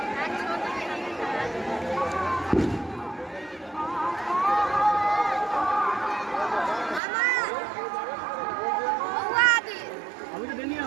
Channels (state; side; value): drops out; left; at 7.0 s